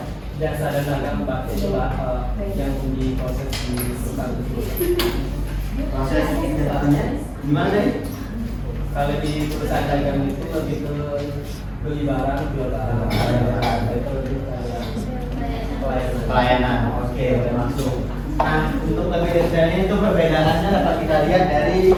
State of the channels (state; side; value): identical; both; correlation 1.00